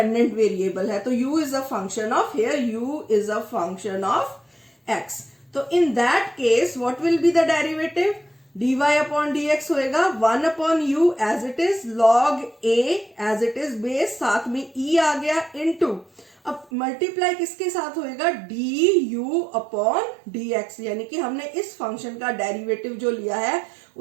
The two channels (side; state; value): left; drops out; at 16.7 s